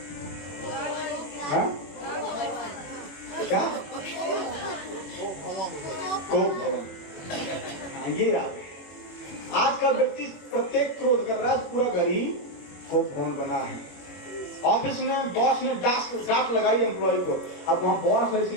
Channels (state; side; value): late; right; 21 ms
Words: हाँ? क्या? कोप भवन। हाँ, ये याद है। आज का व्यक्ति प्रत्येक क्रोध कर रहा है, पूरा घर ही कोप भवन बना है। ऑफिस में बॉस ने डांट लगाई एम्प्लॉय को, अब वहां बॉस है